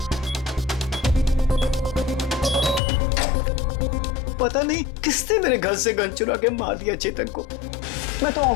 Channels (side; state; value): right; drops out; at 2.8 s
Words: पता नहीं किसने मेरे घर से गन चुरा के मार दिया चेतन को। मैं तो